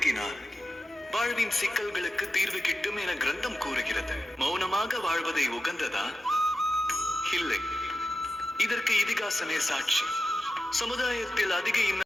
வாழ்வின் சிக்கல்களுக்கு தீர்வு கிட்டும் என கிரந்தம் கூறுகிறது. மௌனமாக வாழ்வதை உகந்ததா? இல்லை, இதற்கு இதிகாசமே சாட்சி. சமுதாயத்தில் அதிக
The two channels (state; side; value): normal; both; correlation 0.92